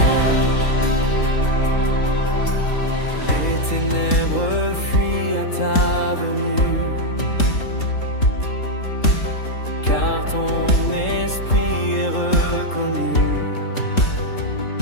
Les ténèbres fuient à ta venue, car ton esprit est reconnu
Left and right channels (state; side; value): late; right; 3.7 ms